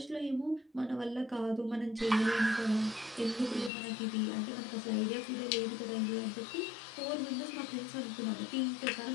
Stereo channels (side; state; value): right; drops out; at 3.7 s